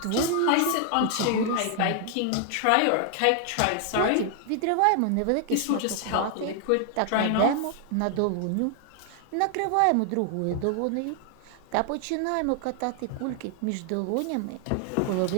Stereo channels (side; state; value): both; different; correlation 0.00